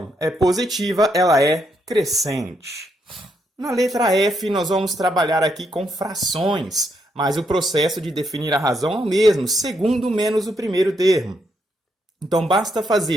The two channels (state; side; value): normal; both; correlation 0.77